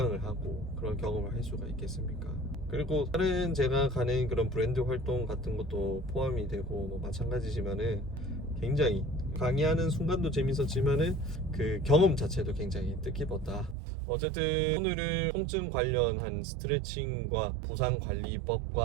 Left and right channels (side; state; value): left; drops out; at 13.8 s